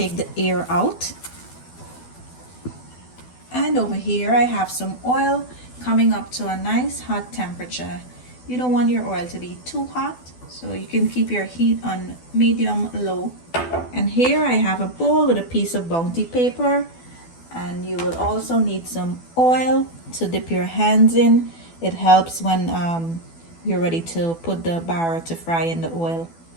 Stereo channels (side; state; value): right; late; 12 ms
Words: the air out. And over here I have some oil coming up to a nice hot temperature. You don't want your oil to be too hot, so you can keep your heat on medium low. And here I have a bowl with a piece of bounty paper, and you will also need some oil to dip your hands in. It helps when you're ready to put the bara to fry in the oil.